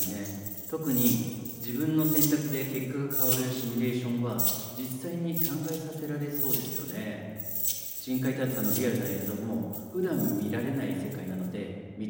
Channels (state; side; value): identical; both; correlation 1.00